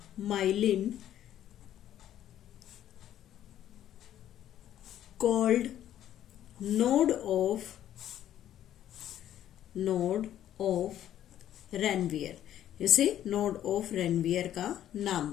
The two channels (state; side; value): quieter; right; 11.5 dB